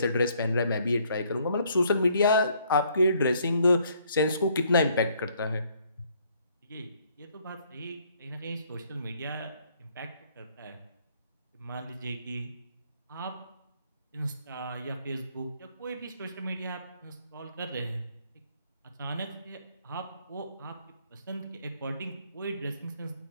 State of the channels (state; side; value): inverted; both; correlation -0.65